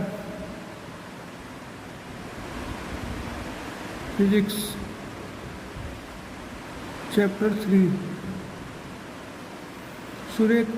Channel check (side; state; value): both; identical; correlation 1.00